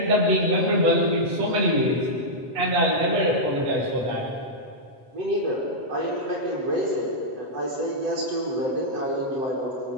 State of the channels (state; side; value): late; left; 7.9 ms